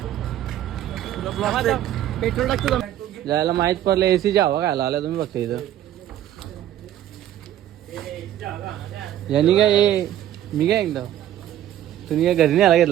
पेट्रोल टाकतो. जायला माहित पडलं एसीच्या हवा खायला आला तुम्ही बघता इथं. यांनी काय मी काय एकदा तुम्ही काय घरी नाही आला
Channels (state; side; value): quieter; left; 12.0 dB